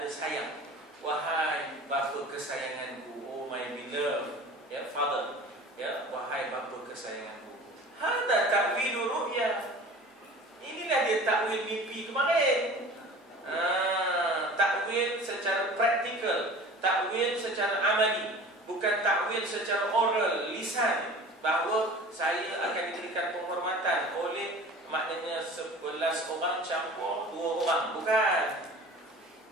sayang. Wahai bapa kesayanganku, oh my beloved, ya father, ya wahai bapa kesayanganku. Hada ta'wilu ru'ya. Inilah dia takwil mimpi kemarin. Takwil secara praktikal, takwil secara amali, bukan takwil secara oral, lisan, bahawa saya akan diberikan penghormatan oleh, maknanya 11 orang campur 2 orang. Bukan.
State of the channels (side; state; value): both; normal; correlation 0.41